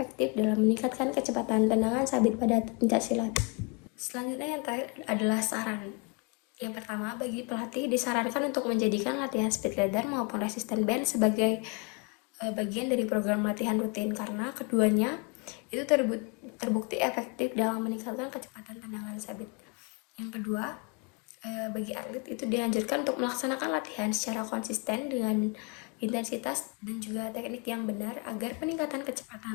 dalam meningkatkan kecepatan tendangan sabit pada pencaksilat. Selanjutnya yang terakhir adalah saran. Yang pertama, bagi pelatih disarankan untuk menjadikan latihan speed leader maupun resisten band sebagai bagian dari program latihan rutin karena keduanya itu terbukti efektif dalam meningkatkan kecepatan tendangan sabit. Yang kedua, bagi atlet itu dianjurkan untuk melaksanakan latihan secara konsisten dengan intensitas dan juga teknik yang benar agar peningkatan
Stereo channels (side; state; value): right; quieter; 31.3 dB